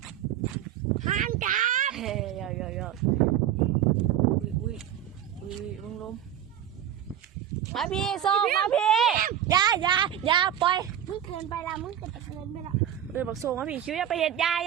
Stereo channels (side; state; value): left; quieter; 10.5 dB